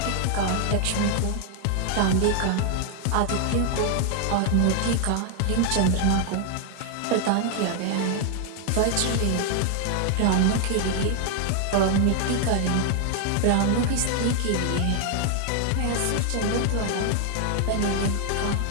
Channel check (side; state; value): both; different; correlation 0.00